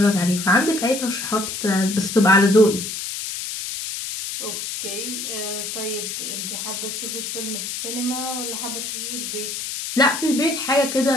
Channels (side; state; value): left; noise; hiss, 5 dB below the sound